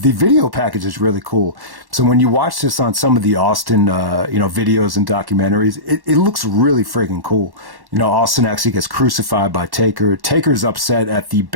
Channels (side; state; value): left; late; 1.1 ms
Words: video package is really cool. So when you watch this on some of the Austin videos and documentaries, it looks really freaking cool. Austin actually gets crucified by Taker. Taker's upset at the